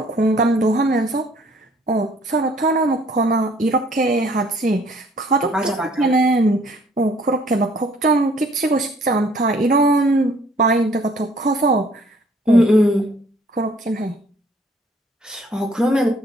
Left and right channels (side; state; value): both; normal; correlation 0.59